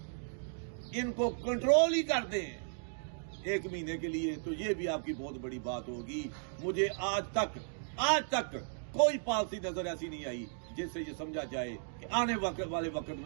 इनको कंट्रोल ही कर दें एक महीने के लिए, तो ये भी आपकी बहुत बड़ी बात होगी। मुझे आज तक कोई पॉलिसी नजर ऐसी नहीं आई जिससे ये समझा जाए कि आने वाले वक्त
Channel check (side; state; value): left; silent; digital silence